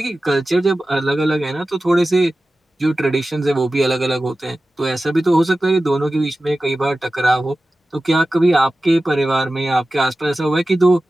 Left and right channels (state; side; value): normal; both; correlation 0.95